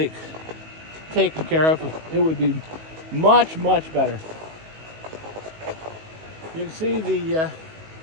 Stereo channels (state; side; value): late; left; 19 ms